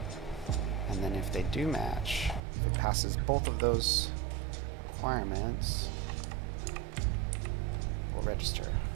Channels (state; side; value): drops out; left; at 2.4 s